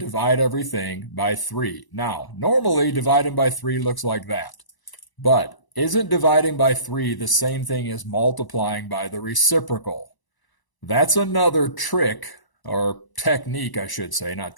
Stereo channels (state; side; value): late; right; 1.0 ms